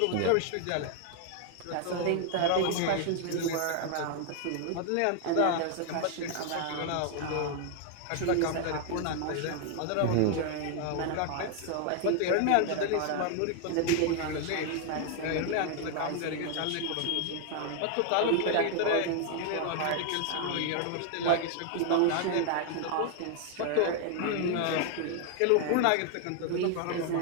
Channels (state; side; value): different; both; correlation 0.00